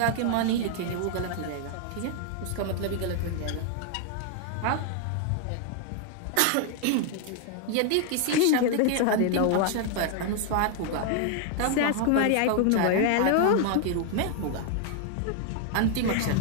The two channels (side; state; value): both; different; correlation 0.00